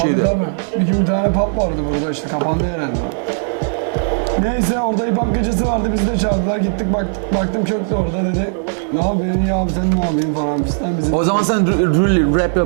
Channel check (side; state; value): left; silent; digital silence